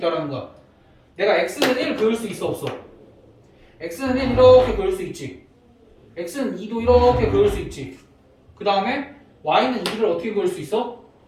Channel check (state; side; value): identical; both; correlation 1.00